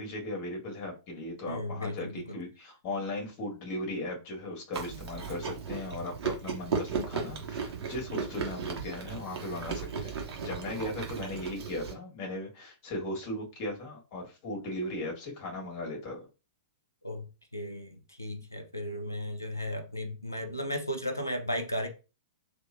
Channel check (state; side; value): inverted; both; correlation -0.33